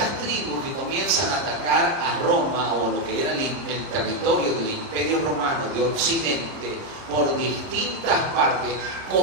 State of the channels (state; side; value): late; left; 30 ms